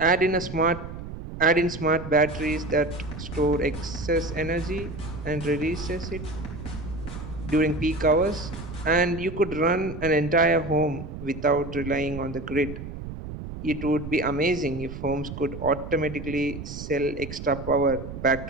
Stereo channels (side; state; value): right; noise; rumble, 10 dB below the sound